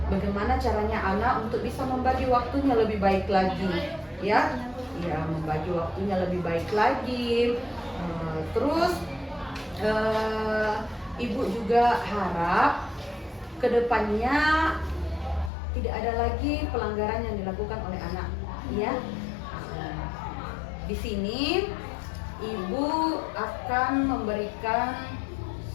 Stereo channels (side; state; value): right; drops out; at 15.5 s